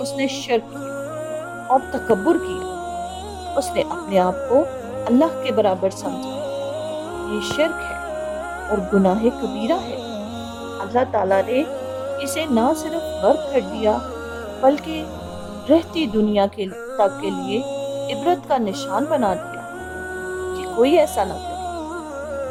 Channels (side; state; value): both; identical; correlation 1.00